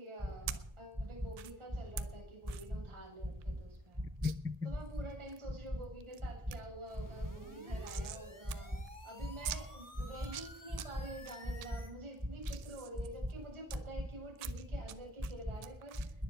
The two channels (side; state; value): left; late; 1.7 ms